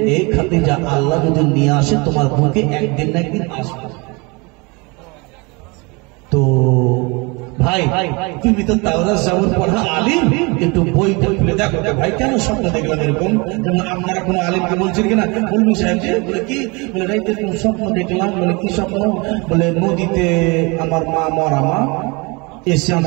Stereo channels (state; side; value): quieter; left; 27.9 dB